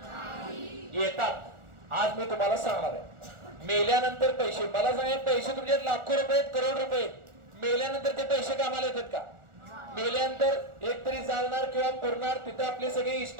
येतात. आज मी तुम्हाला सांगणार आहे, मेल्यानंतर पैसे. मला सांगा, पैसे तुमचे लाखो रुपये आहेत, करोड रुपये आहेत, मेल्यानंतर ते पैसे कामाला येतात का? मेल्यानंतर एकतरी जाणार किंवा पुरणार, तिथे आपले सगळे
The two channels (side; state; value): left; late; 1.4 ms